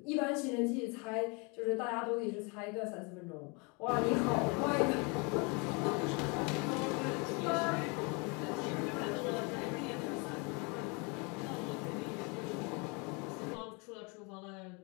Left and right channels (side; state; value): right; quieter; 31.2 dB